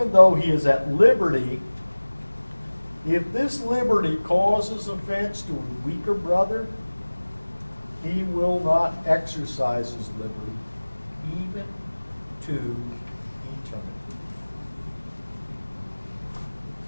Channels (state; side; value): inverted; both; correlation -1.00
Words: though he is at liberty, if this liberty causes offense to a weaker brother, he will not exercise his liberty even to eternity.